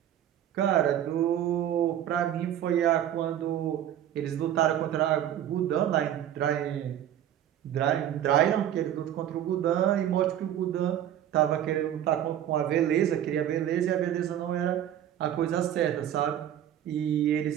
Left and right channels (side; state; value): left; quieter; 11.0 dB